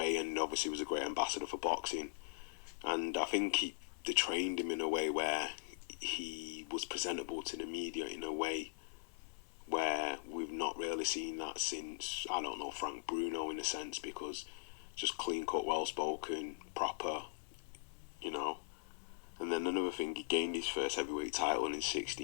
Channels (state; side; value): silent; right; 51 dB below the other